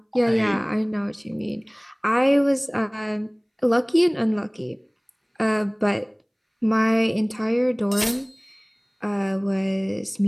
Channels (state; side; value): identical; both; correlation 1.00